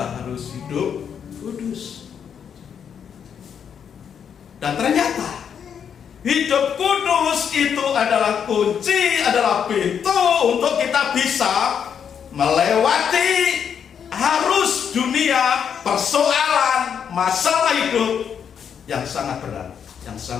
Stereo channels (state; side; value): quieter; right; 7.7 dB